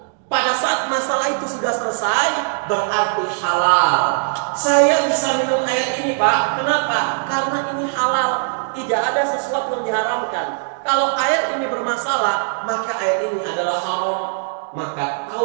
Pada saat masalah itu sudah selesai, berarti halal. Saya bisa minum air ini, Pak. Kenapa? Karena ini halal. Tidak ada sesuatu yang diharamkan. Kalau air ini bermasalah, maka air ini adalah haram. Maka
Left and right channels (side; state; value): left; silent; digital silence